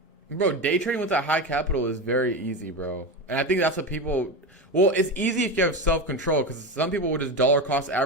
Bro, day trading with that high capital is very easy, bro. And I think that's what people. Well, it's easy if you have self control, because some people will just dollar cost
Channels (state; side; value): normal; both; correlation 0.20